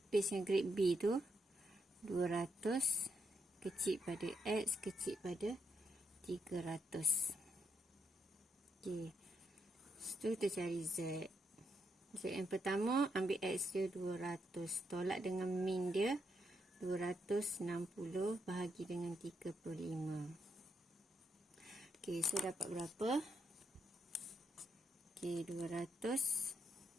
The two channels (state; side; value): normal; both; correlation 0.80